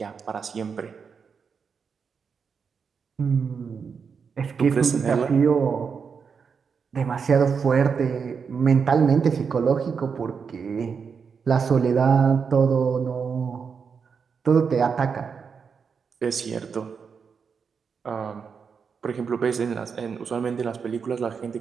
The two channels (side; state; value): left; quieter; 6.0 dB